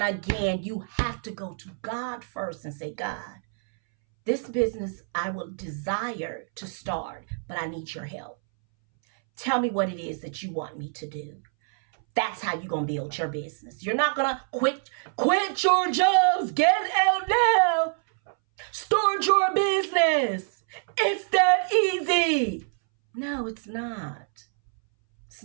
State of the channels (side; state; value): left; silent; 61 dB below the other